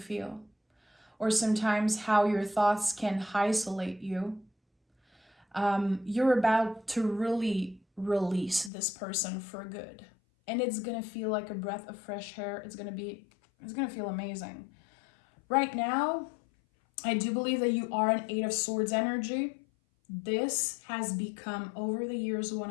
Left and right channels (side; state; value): right; drops out; at 8.7 s